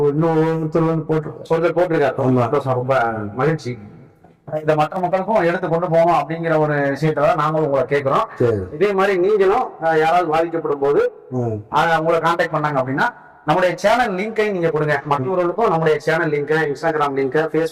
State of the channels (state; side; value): identical; both; correlation 1.00